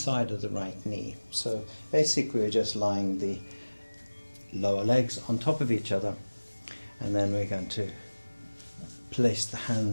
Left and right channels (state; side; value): inverted; both; correlation -1.00